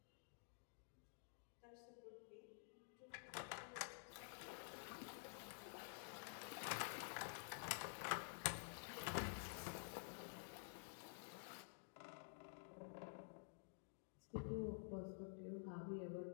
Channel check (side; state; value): right; silent; digital silence